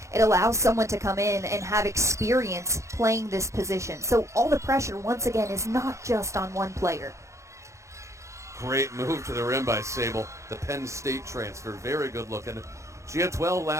it allows someone to come in and have experience playing this position. So all the pressure, once again, is not just on one player. Great move to the rim by Sable. The Penn State transfer, very good looking. She had 12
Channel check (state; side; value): late; left; 0.14 ms